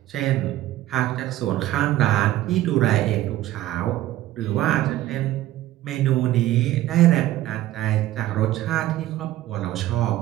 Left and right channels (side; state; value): left; quieter; 14.8 dB